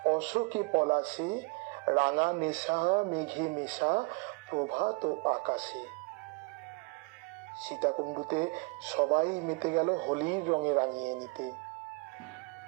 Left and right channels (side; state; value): left; quieter; 28.0 dB